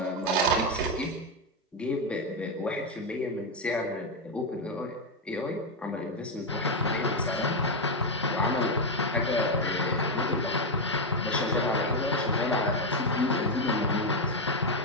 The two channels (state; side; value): normal; both; correlation 0.05